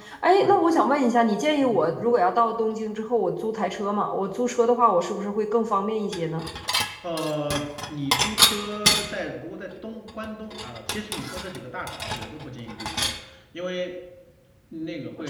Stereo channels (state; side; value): identical; both; correlation 1.00